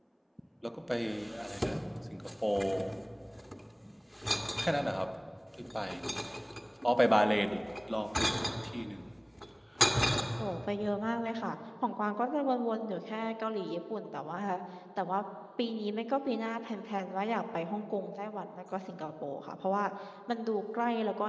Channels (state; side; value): identical; both; correlation 1.00